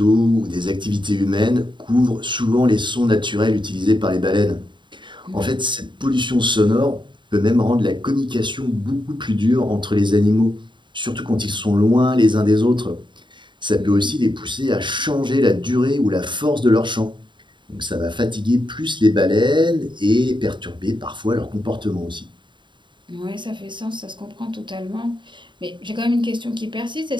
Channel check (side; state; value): left; late; 0.23 ms